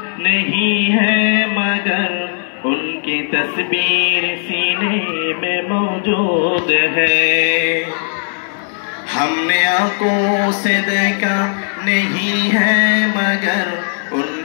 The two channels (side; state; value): right; silent; 57 dB below the other